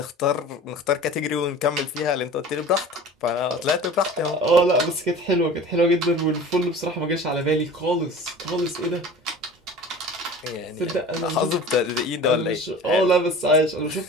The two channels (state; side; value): normal; both; correlation 0.39